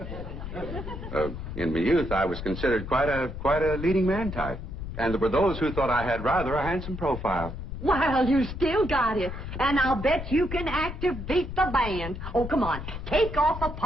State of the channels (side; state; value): left; noise; rumble, 8 dB below the sound